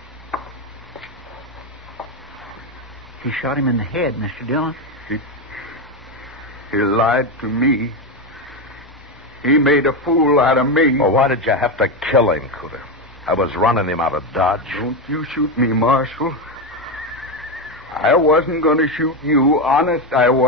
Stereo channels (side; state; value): both; normal; correlation 0.11